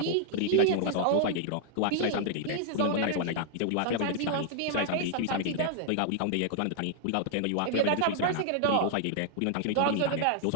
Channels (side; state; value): both; different; correlation 0.00